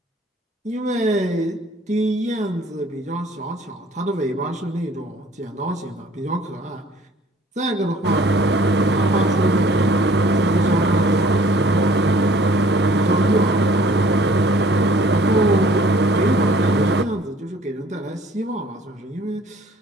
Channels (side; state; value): both; normal; correlation 0.55